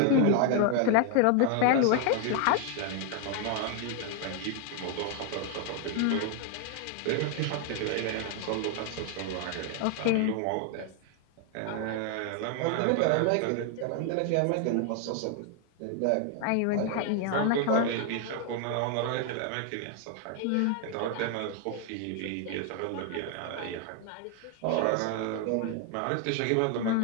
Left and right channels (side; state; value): both; different; correlation 0.00